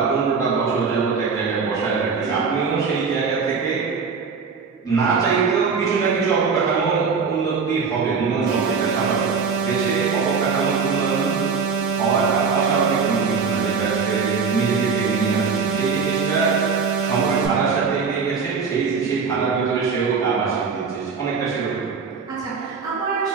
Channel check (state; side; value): quieter; left; 5.4 dB